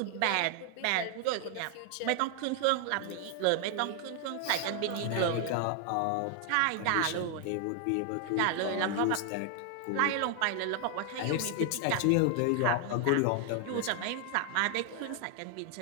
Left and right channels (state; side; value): different; both; correlation 0.00